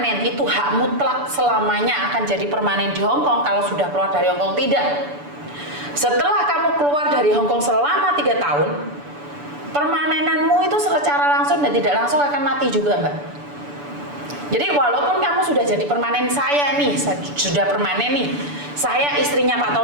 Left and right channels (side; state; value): left; late; 6.9 ms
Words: itu hak mutlak selamanya akan jadi permanen di Hong Kong kalau sudah keluar dari Hong Kong? Tidak. Setelah kamu keluar dari Hong Kong selama 3 tahun, permanenanmu itu secara langsung dan tidak langsung akan mati juga, Mbak. Jadi walaupun kamu sudah jadi permanen saya nih, sudah permanen nih, saya istrinya Pak